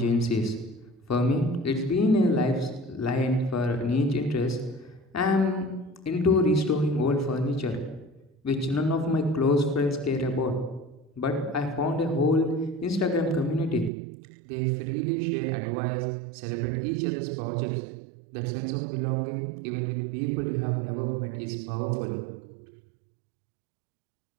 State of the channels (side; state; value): left; drops out; at 13.9 s